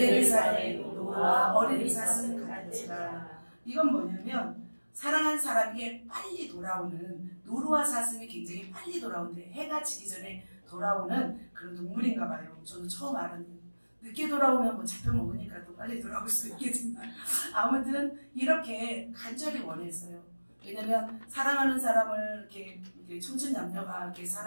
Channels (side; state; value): both; inverted; correlation -1.00